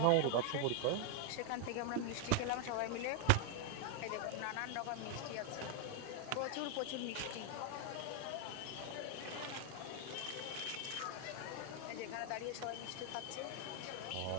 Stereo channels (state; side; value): different; both; correlation 0.00